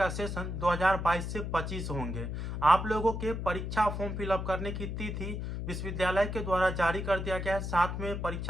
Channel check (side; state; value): left; noise; hum, 4 dB below the sound